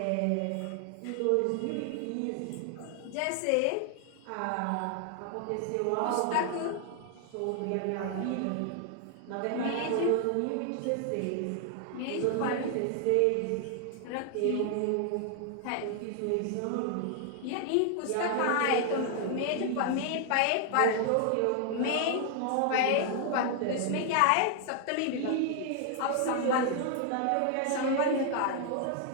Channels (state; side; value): different; both; correlation 0.00